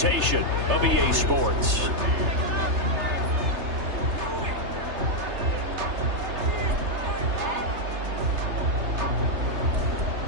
of EA Sports.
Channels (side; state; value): left; late; 3.3 ms